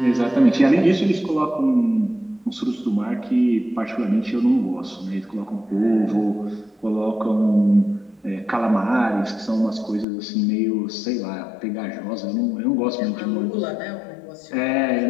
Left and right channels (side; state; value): right; drops out; at 10.1 s